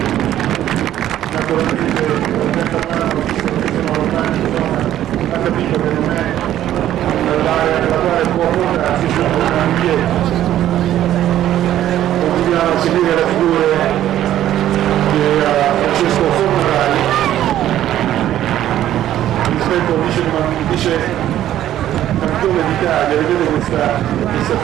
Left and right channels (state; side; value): quieter; left; 12.3 dB